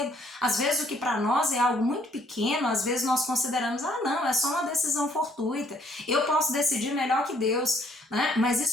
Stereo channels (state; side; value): normal; both; correlation 0.64